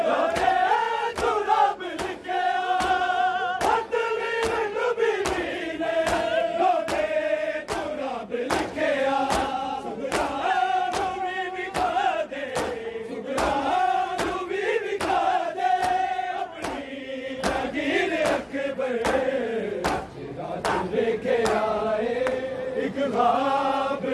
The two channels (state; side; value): identical; both; correlation 1.00